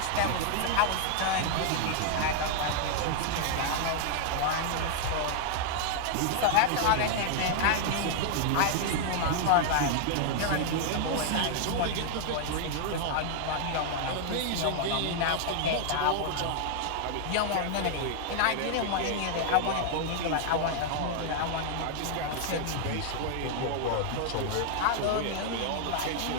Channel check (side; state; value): both; different; correlation -0.01